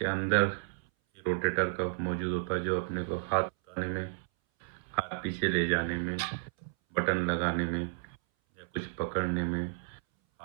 अंदर ये रोटेटर कफ मौजूद होता है, जो अपने को हाथ उठाने में, हाथ पीछे ले जाने में, बटन लगाने में या कुछ पकड़ने में,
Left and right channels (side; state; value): left; silent; 56 dB below the other